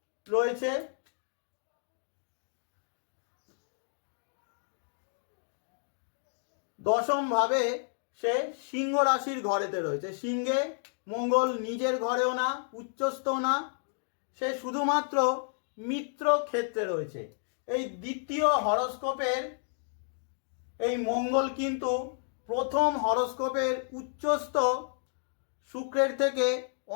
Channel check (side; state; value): right; silent; digital silence